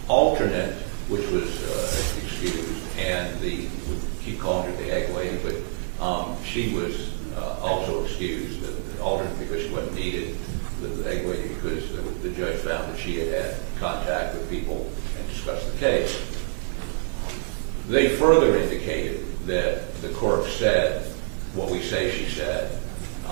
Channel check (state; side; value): silent; left; digital silence